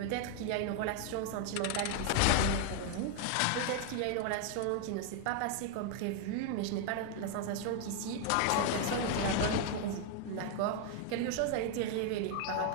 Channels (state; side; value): different; both; correlation 0.00